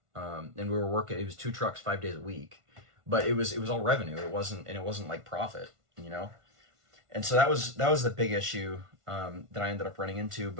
And we were working, it was 2 trucks, 5 days a week, but it was all revenue. It wasn't like profit, And so that was the big issue that I ended up running into.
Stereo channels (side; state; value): left; late; 1.5 ms